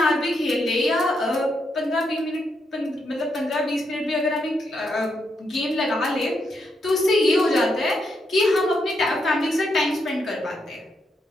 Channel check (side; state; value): both; normal; correlation 0.80